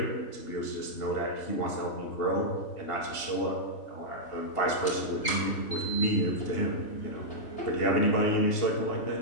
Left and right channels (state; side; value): late; right; 2.8 ms